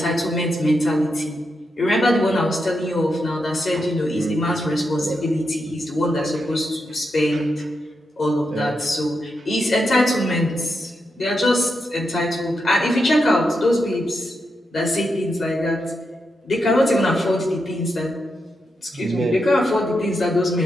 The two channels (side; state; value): both; normal; correlation 0.85